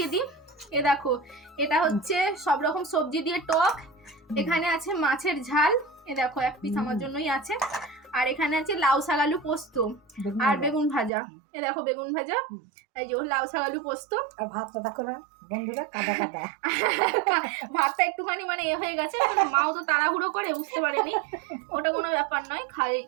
দিই। এ দেখো, এটা হচ্ছে সব রকম সবজি দিয়ে টক, এখানে আছে মাছের ঝাল, এ দেখো এক পিস আমার জন্যই আছে, আর এখানে আছে লাউ শাক আলু পোস্ত আর বেগুন ভাজা। এ দেখো বেগুন ভাজা, এই যে লাউ শাক আলু পোস্ত। আর ভাতটা দেখো না বন্ধুরা, কাদা কাদা। ভাতটা একটুখানি মানে এ হয়ে গেছে, মাও তো তাড়াহুড়ো করে, বুঝতে পারেনি। ওটা কোনো ব্যাপার নয়,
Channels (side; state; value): left; drops out; at 11.1 s